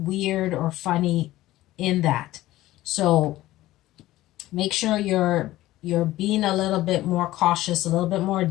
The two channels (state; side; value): quieter; right; 16.1 dB